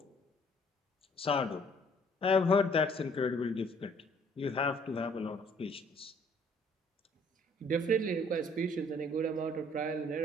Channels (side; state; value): both; normal; correlation 0.60